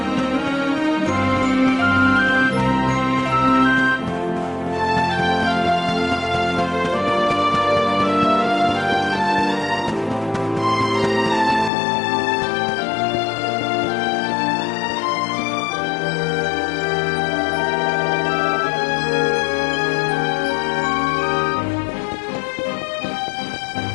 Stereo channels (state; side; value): drops out; right; at 11.7 s